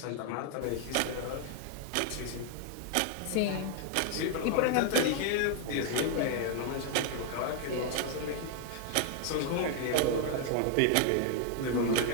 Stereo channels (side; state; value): both; different; correlation 0.00